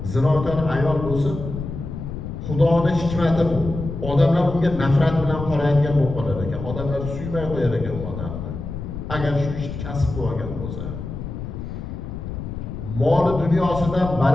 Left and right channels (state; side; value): noise; left; rumble, 7 dB below the sound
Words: zinokor ayol bo'lsa, Xudoning hikmati bu. Odamlar unga nafrat bilan qaraydigan bo'lib qolar ekan. Odamlar suymay qo'yar ekan u odamni. Agar shu ishni kasb qilgan bo'lsa. Mol dunyosidan